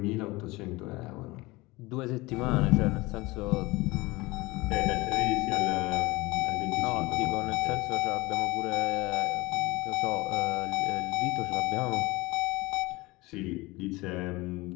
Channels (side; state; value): right; quieter; 22.0 dB